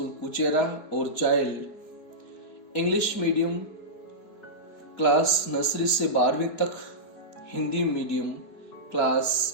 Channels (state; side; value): late; right; 4.6 ms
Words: Kuchera और child English medium class nursery से 12वीं तक, हिंदी मीडियम